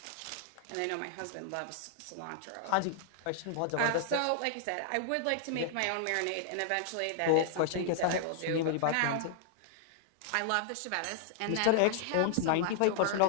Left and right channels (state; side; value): different; both; correlation -0.01